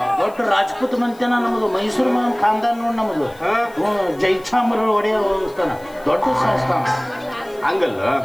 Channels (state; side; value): noise; left; hiss, 26 dB below the sound